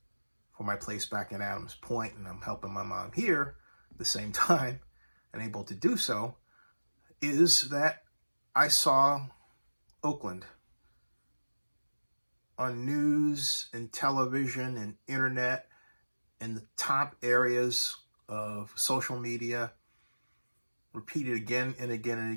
for my place back in Adams Point, and I'm helping my mom here at the same time and able to do so, is that I saw Oakland on news and television and internet in the top areas of social media, repeated again and again and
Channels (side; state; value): both; inverted; correlation -1.00